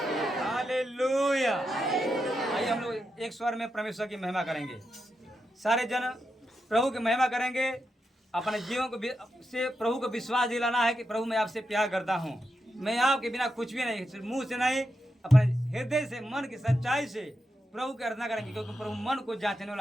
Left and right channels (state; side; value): normal; both; correlation 0.86